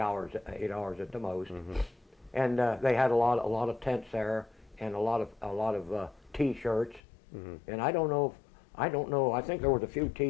at the most, and they had a lot of tents there and a lot of T-shirts, and I don't know. I think there was a few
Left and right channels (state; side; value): drops out; right; at 7.0 s